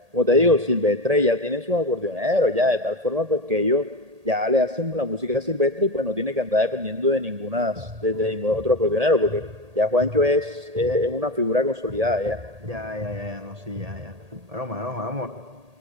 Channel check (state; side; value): late; left; 1.8 ms